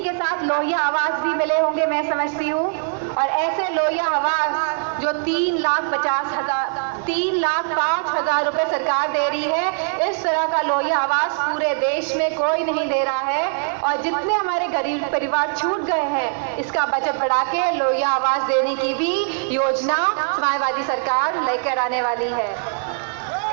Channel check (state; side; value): silent; left; digital silence